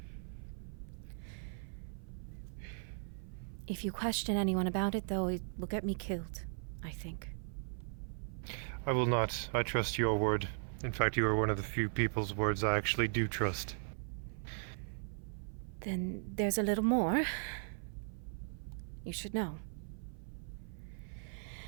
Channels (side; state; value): left; silent; 52 dB below the other